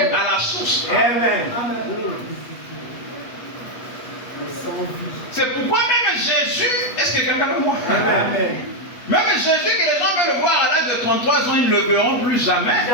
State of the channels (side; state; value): right; late; 8.2 ms